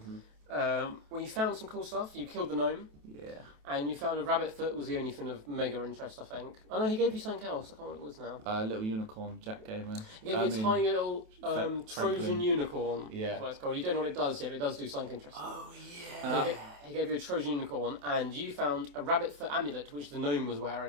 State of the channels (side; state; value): left; late; 28 ms